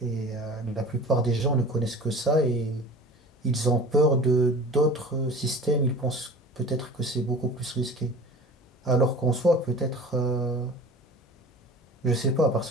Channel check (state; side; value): normal; both; correlation 0.41